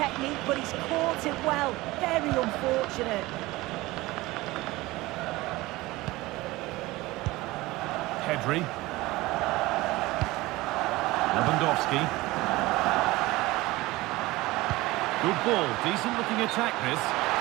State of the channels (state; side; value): quieter; left; 19.9 dB